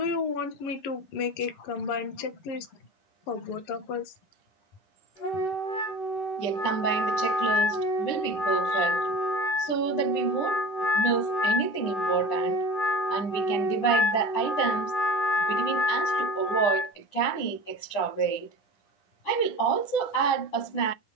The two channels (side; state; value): right; late; 10 ms